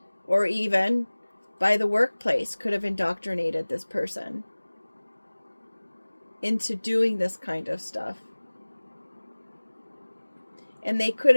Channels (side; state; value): both; inverted; correlation -1.00